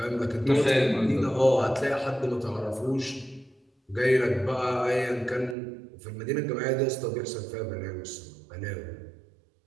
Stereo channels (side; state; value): left; drops out; at 5.6 s